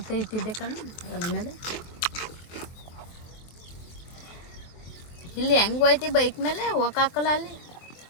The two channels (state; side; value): late; right; 24 ms